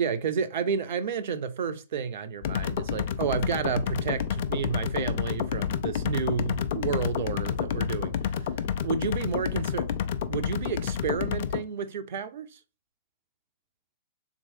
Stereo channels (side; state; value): both; inverted; correlation -0.46